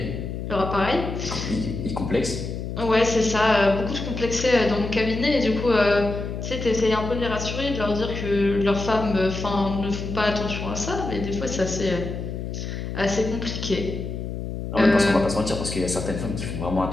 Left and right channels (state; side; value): noise; left; hum, 6 dB below the sound